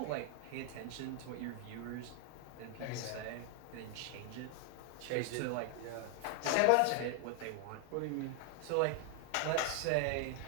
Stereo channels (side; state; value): both; different; correlation 0.00